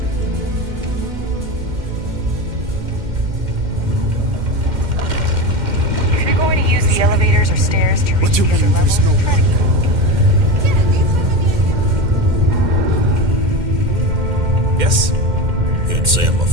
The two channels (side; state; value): left; late; 2.1 ms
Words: The elevators or stairs to reach the other levels. Try to keep Yes? Can't say I'm a